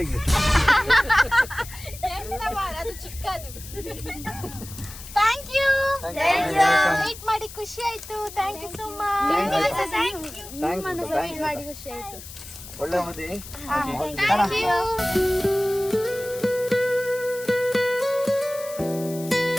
ಅದು ಚಿಕ್ಕದು. ಥ್ಯಾಂಕ್ ಯು, ವೇಟ್ ಮಾಡಿ ಖುಷಿ ಆಯ್ತು. Thank you so much. Wait ಮಾಡಿ ಖುಷಿ ಆಯ್ತು. ಒಳ್ಳೆ ಮದಿ. Thank you.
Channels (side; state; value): left; noise; hiss, 14 dB below the sound